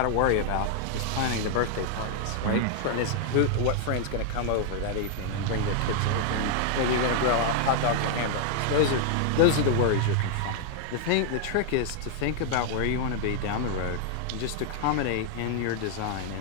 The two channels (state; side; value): different; both; correlation 0.00